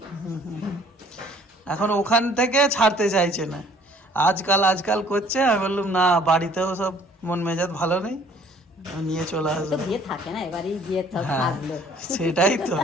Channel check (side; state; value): both; normal; correlation 0.56